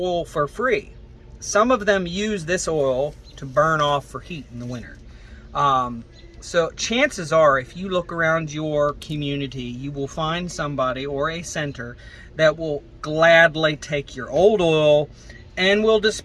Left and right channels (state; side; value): identical; both; correlation 1.00